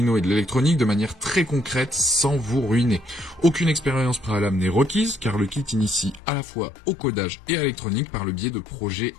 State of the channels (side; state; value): right; drops out; at 6.2 s